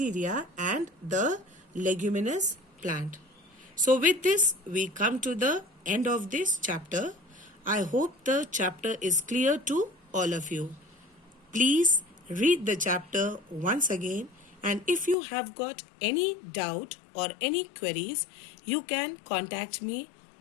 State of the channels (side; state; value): right; drops out; at 15.2 s